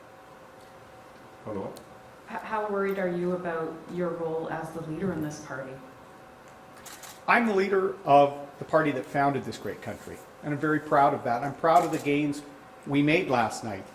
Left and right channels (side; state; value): both; identical; correlation 1.00